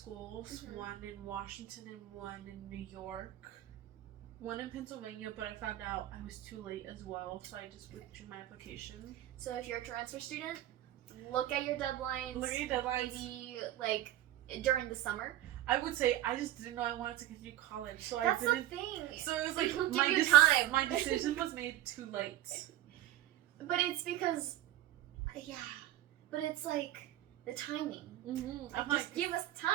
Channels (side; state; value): left; quieter; 13.6 dB